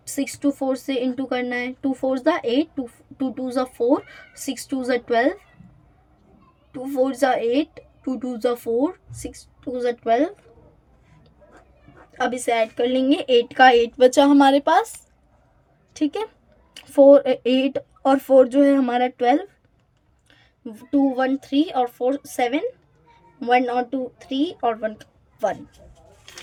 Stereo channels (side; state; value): both; identical; correlation 1.00